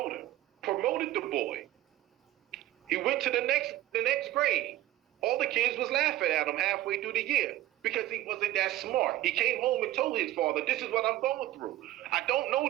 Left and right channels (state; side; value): quieter; left; 14.9 dB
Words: him. Promoted the boy. He went to the next grade. All the kids was laughing at him halfway through the year because he wasn't that smart. He came home and told his father, this is what I'm going through. I don't know